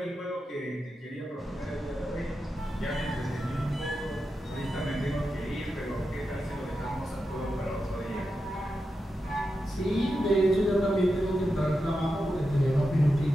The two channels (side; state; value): both; normal; correlation 0.89